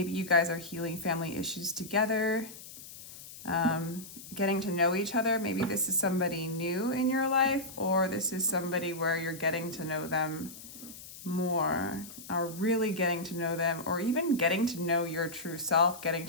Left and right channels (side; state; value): left; noise; hiss, 15 dB below the sound